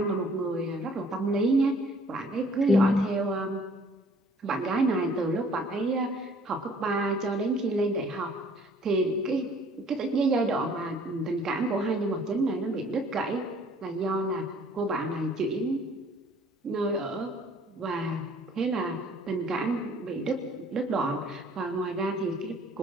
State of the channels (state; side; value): normal; both; correlation 0.57